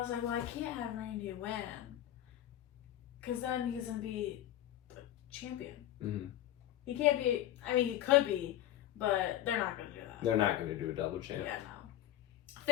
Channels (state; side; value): quieter; right; 12.9 dB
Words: like, well, I can't have Randy win, because then he's going to be the champion. Mm-hmm. He can't be, he could be, but they're not going to do that. They're not going to do a double champ. Yeah, no.